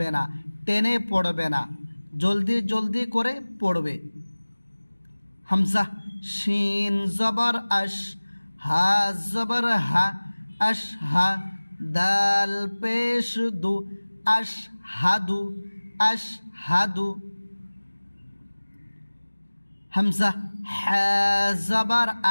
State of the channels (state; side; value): inverted; both; correlation -1.00